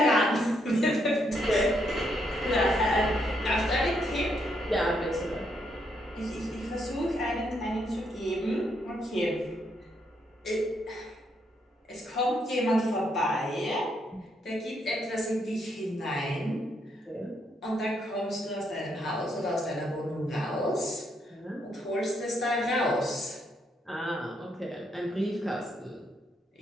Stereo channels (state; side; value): normal; both; correlation 0.75